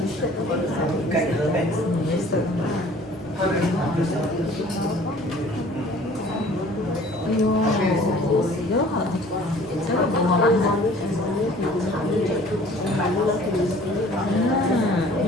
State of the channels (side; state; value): both; normal; correlation 0.51